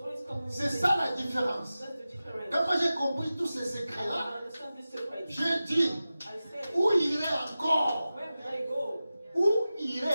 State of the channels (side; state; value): both; inverted; correlation -0.95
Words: coming with C'est peace. ça la différence. That's the difference. Quand moi j'ai compris tous ces secrets-là, I understand this secret. j'ai dit, I said, où irait encore? where will I go? Où irait